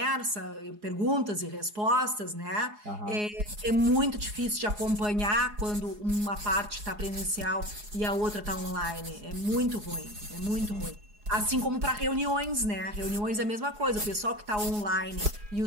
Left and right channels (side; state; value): left; late; 4.8 ms